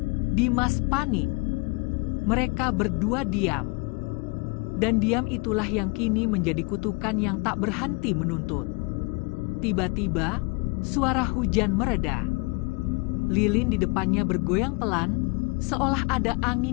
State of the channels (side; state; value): right; quieter; 28.9 dB